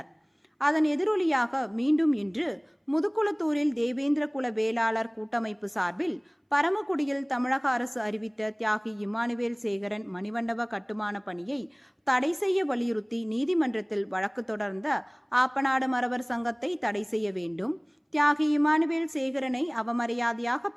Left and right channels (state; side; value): identical; both; correlation 1.00